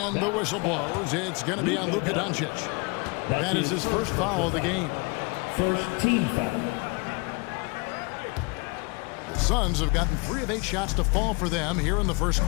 the whistle blows. It's going to be on Luka Doncic. That is his first foul of the game. First team foul. The Suns have gotten 3 of 8 shots to fall for them here in the first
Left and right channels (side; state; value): right; quieter; 30.1 dB